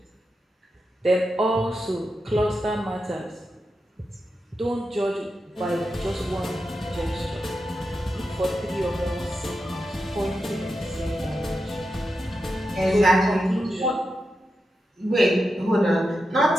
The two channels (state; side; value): normal; both; correlation 0.88